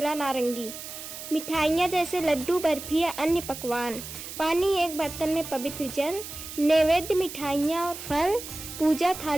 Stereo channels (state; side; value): noise; right; hiss, 11 dB below the sound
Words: नारंगी, मिठाइयाँ जैसे लड्डू, बर्फी या अन्य पकवान, पानी, एक बर्तन में पवित्र जल, नैवेद्य, मिठाइयाँ और फल, पूजा